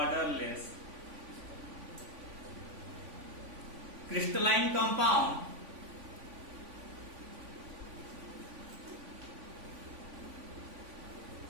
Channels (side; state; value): left; late; 3.5 ms